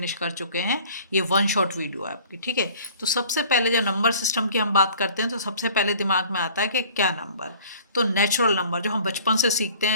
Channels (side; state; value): both; inverted; correlation -0.49